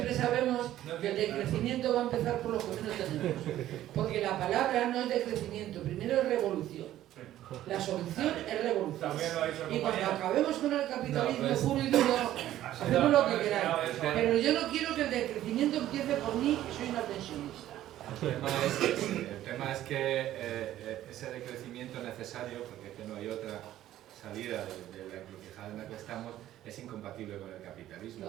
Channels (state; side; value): quieter; left; 13.2 dB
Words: sabemos que el decrecimiento decrecimiento va a empezar por los que menos tenemos, porque la palabra no es decrecimiento, primero es revolución. La solución es revolución. Y cuando acabemos con el capitalismo puro y duro, hacemos lo que queráis. Pero yo no quiero que el decrecimiento empiece por mí, que soy una pensionista. El tema es que ese decrecimiento necesario, porque es que no hay otra salida de la encrucijada en la que estamos, es incompatible con el capitalismo.